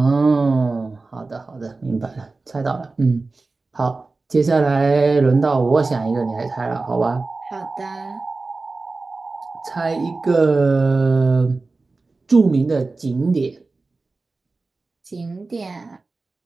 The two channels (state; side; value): quieter; left; 3.6 dB